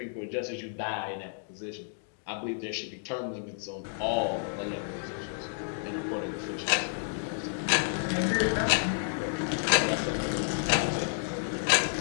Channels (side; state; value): right; silent; digital silence